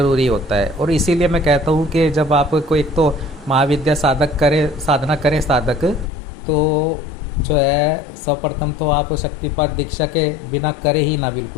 होता है। और इसीलिए मैं कहता हूँ कि जब आपको एक तो महाविद्या साधना करें साधक, तो जो है सर्वप्रथम तो आप शक्तिपात दीक्षा के बिना करे ही ना,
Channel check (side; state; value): right; drops out; at 6.1 s